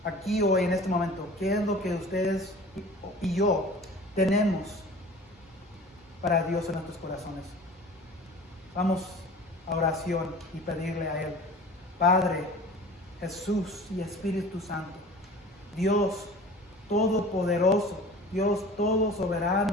aquí hoy en este momento, ¿qué es lo que ustedes y yo tenemos para Dios en nuestros corazones? Vamos a oración y pedirle a Él: Padre, Jesús y Espíritu Santo, Dios todopoderoso, Dios todo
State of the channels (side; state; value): both; normal; correlation 0.42